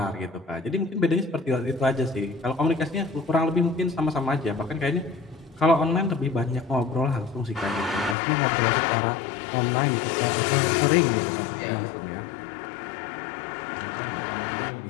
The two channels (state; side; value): drops out; right; at 8.2 s